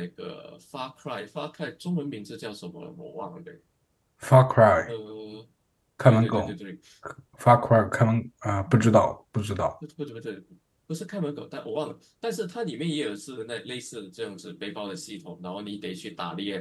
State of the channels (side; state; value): both; identical; correlation 1.00